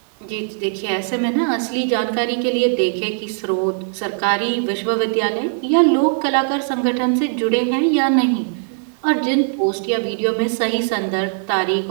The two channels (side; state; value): left; silent; digital silence